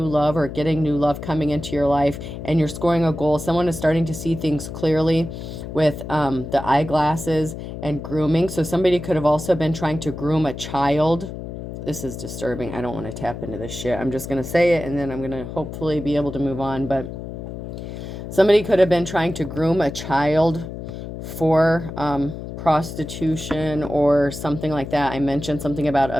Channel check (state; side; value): noise; left; hum, 9 dB below the sound